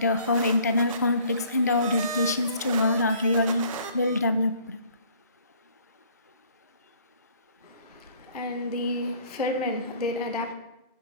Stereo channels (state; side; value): inverted; both; correlation -0.56